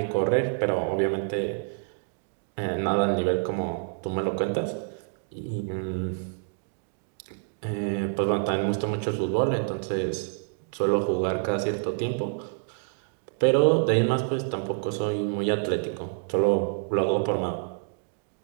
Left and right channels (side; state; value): left; silent; digital silence